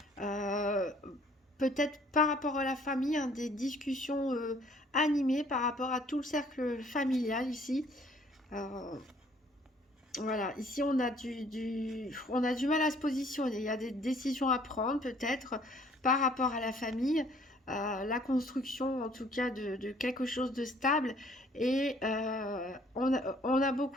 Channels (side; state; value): both; normal; correlation 0.59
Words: Peut-être par rapport à la famille, des discussions animées par rapport à tout le cercle familial ici. Voilà, ici on a on a du mal à se positionner. Il y a des décisions à prendre peut-être par rapport à la famille, la construction en tout cas de quelque chose de stable. Et on a